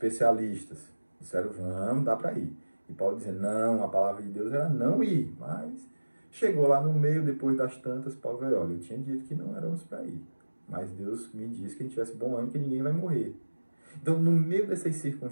disseram, vamos, dá para ir. E Paulo dizia, não, a palavra de Deus era não ir, mas chegou lá no meio, depois das tantas, Paulo veio, olha, eu tinha dito que não éramos para ir, mas Deus me disse que a gente tivesse bom ânimo, que ninguém vai morrer. Então, no meio dessas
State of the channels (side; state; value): both; inverted; correlation -1.00